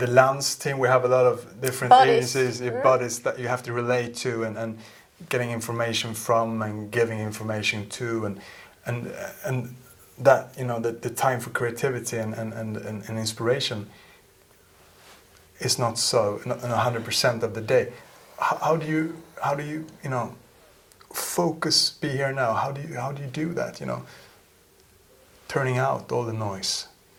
Lunds team, we have a lot of different agencies, bodies that you have to relate to and getting information from and giving information to and that, the time for creativity and inspiration is not 100% of the day. How do you focus, be here now? How do you do that, turning out all the noise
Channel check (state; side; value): identical; both; correlation 1.00